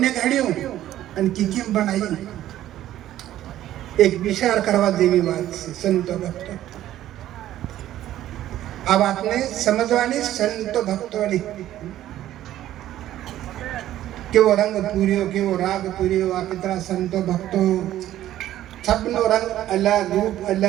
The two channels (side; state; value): left; quieter; 13.1 dB